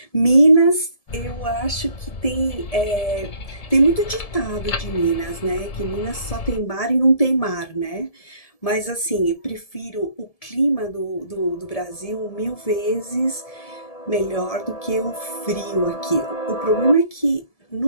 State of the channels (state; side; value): late; right; 1.7 ms